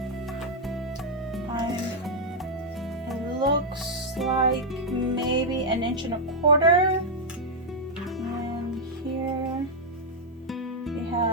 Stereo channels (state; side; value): normal; both; correlation -0.02